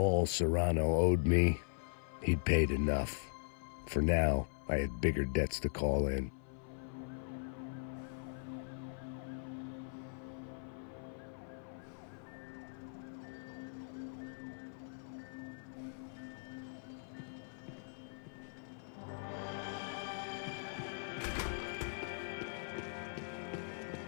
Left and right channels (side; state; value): right; silent; 51 dB below the other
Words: Serrano owed me, he'd paid enough. For now, I had bigger debts to call in.